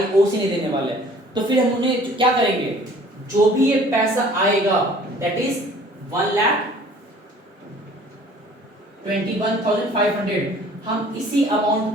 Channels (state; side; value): normal; both; correlation 0.52